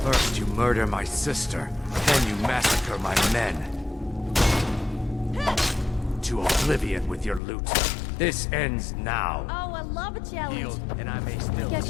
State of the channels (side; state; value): right; drops out; at 7.4 s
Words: First you murder my sister, then you massacre my men. To oblivion with your loot. This ends now. Oh, I love a challenge. Yield, and I may still Guess